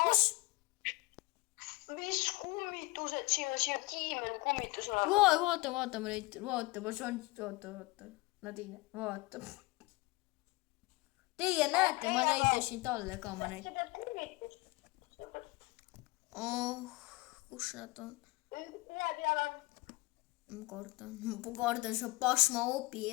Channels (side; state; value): right; quieter; 22.6 dB